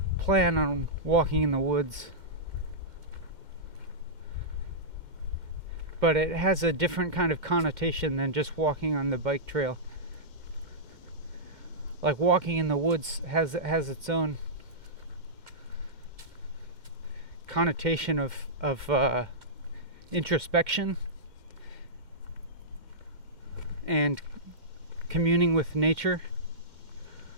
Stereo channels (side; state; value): left; late; 2.2 ms